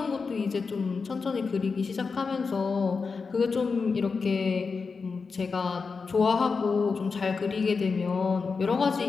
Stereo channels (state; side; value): quieter; right; 4.8 dB